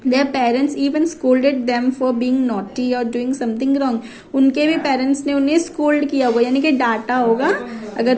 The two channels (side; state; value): both; identical; correlation 1.00